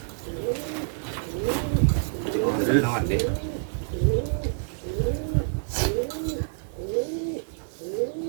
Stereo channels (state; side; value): silent; left; 60 dB below the other